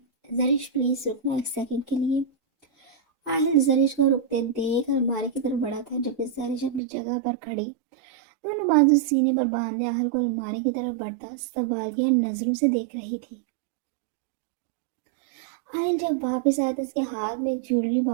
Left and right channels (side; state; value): left; drops out; at 6.8 s